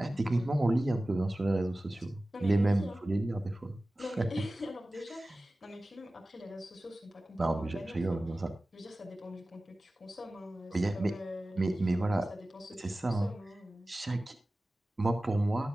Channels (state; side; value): normal; both; correlation 0.96